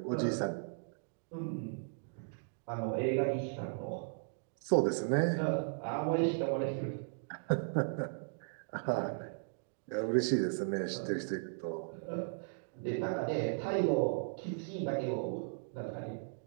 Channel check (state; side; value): silent; left; digital silence